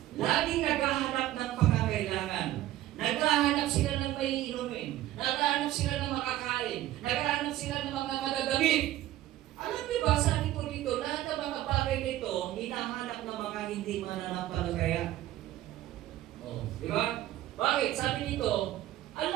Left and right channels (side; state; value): left; quieter; 14.4 dB